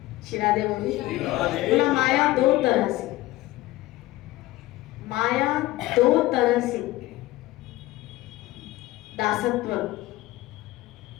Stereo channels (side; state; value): right; quieter; 17.6 dB